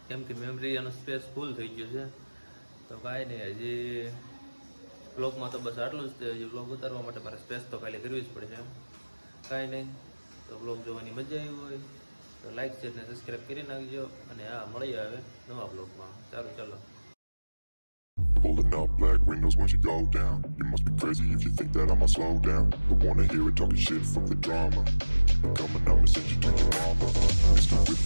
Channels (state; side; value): inverted; both; correlation -1.00